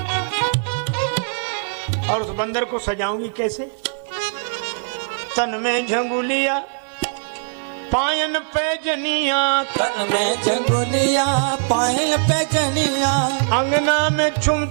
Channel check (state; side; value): silent; left; digital silence